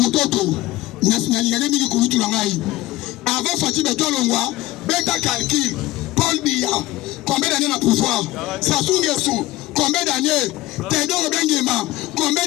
Nationalité Mili Koulitou Langaï. Avant Fatibé Ton Longwa, Beta Calcul, Paul Biya, combien d'années dans le pouvoir? Sassou Nguesso, combien d'années? Théodore Benguema, combien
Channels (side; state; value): right; quieter; 17.5 dB